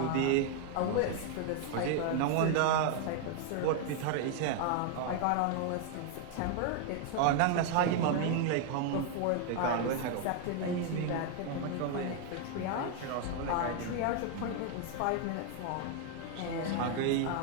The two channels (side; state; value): both; different; correlation 0.00